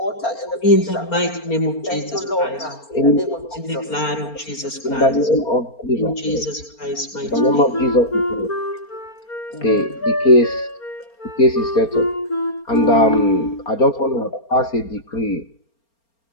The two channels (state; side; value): late; right; 4.3 ms